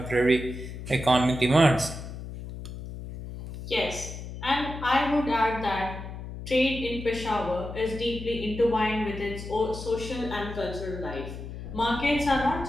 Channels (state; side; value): noise; left; hum, 10 dB below the sound